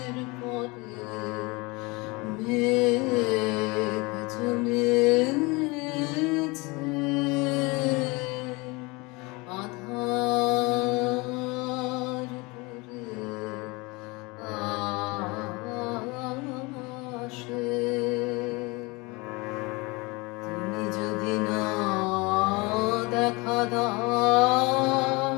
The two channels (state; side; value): quieter; right; 25.6 dB